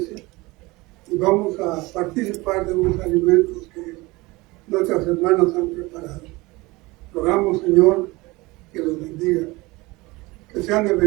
y vamos a participar de unos alimentos que nuestras hermanas han preparado. Rogamos, Señor, que los bendiga, que sean de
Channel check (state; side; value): quieter; left; 22.3 dB